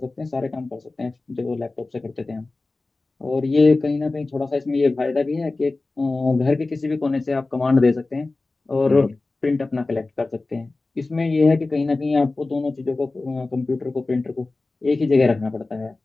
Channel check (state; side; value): quieter; right; 3.3 dB